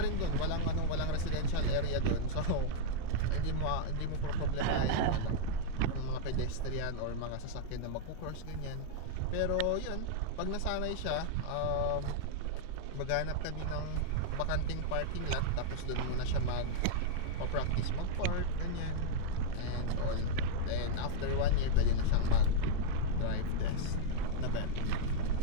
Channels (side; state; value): both; different; correlation -0.01